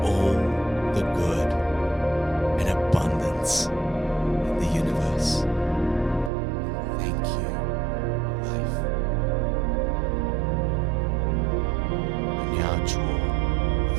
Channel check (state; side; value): drops out; left; at 6.3 s